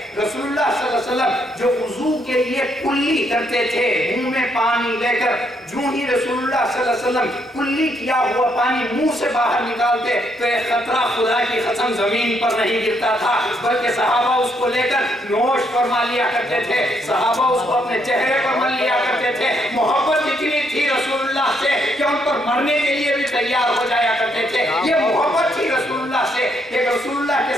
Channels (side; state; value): both; normal; correlation 0.74